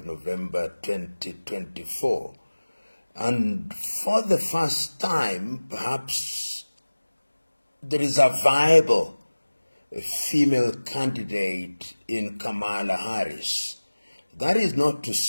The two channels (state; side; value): inverted; both; correlation -1.00